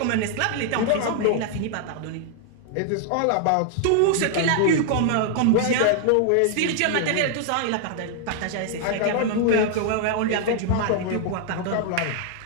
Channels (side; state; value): both; different; correlation 0.00